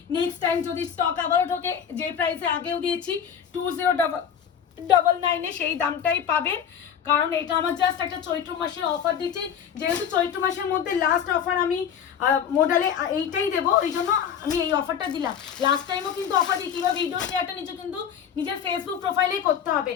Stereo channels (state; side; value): quieter; right; 8.2 dB